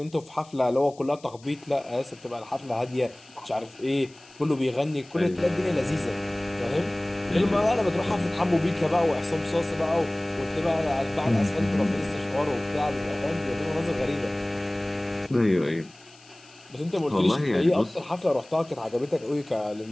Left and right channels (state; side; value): noise; left; hiss, 25 dB below the sound